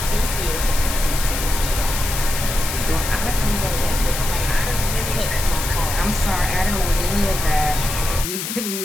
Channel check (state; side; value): noise; left; hiss, 5 dB below the sound